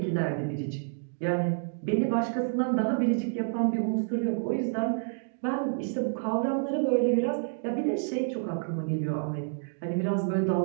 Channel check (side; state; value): left; silent; digital silence